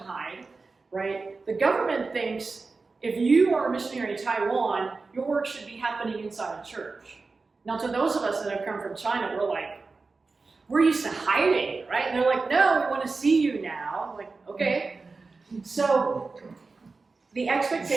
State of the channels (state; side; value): quieter; left; 4.0 dB